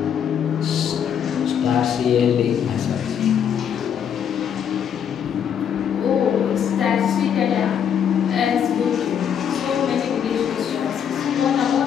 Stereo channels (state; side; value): quieter; right; 8.4 dB